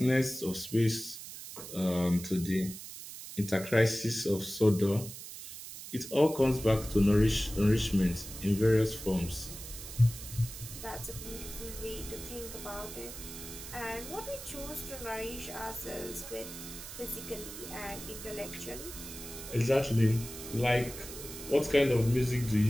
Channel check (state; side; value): noise; right; hiss, 11 dB below the sound